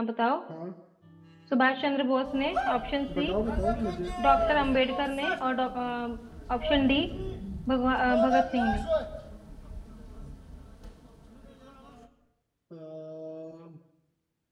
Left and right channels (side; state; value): both; identical; correlation 1.00